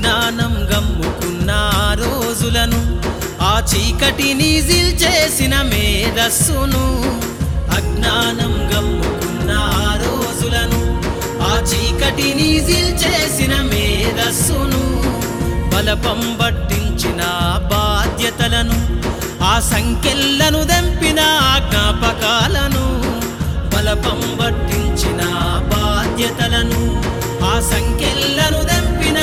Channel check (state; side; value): identical; both; correlation 1.00